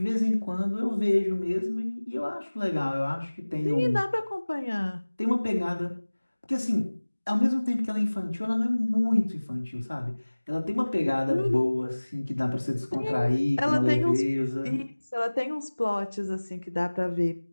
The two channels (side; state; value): both; inverted; correlation -1.00